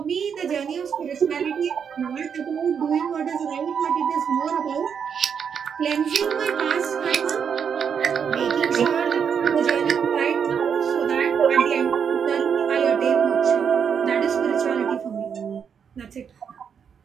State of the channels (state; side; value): quieter; left; 7.2 dB